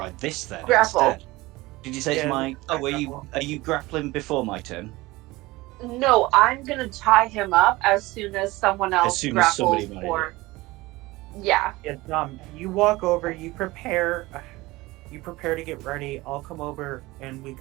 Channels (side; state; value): left; quieter; 20.4 dB